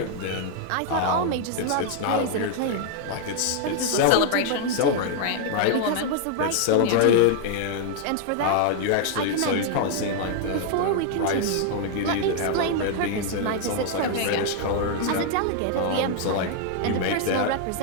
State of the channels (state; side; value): different; both; correlation 0.00